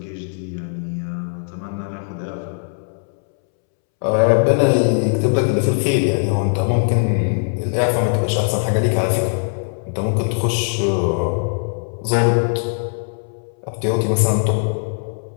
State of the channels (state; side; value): silent; right; 66 dB below the other